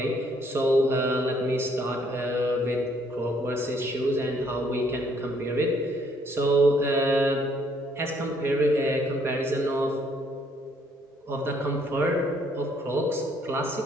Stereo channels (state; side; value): normal; both; correlation 0.66